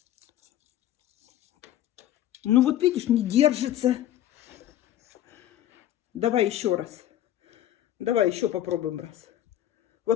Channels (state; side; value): quieter; right; 12.4 dB